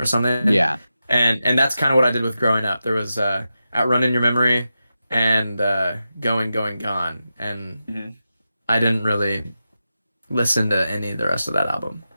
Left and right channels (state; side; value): inverted; both; correlation -0.90